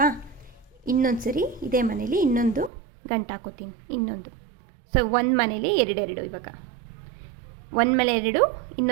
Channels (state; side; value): drops out; left; at 2.7 s